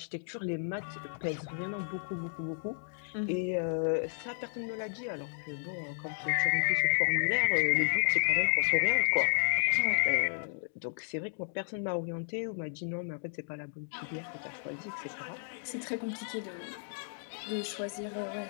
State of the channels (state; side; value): silent; right; digital silence